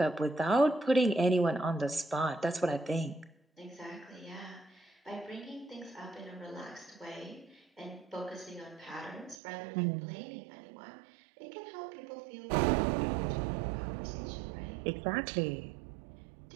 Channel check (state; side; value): drops out; left; at 9.3 s